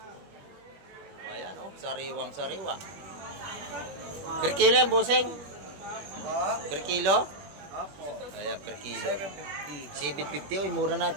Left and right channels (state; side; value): late; left; 21 ms